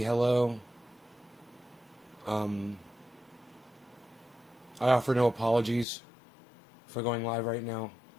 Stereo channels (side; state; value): right; drops out; at 5.9 s